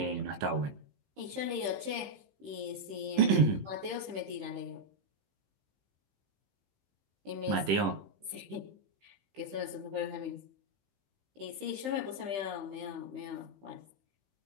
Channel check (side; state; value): left; late; 15 ms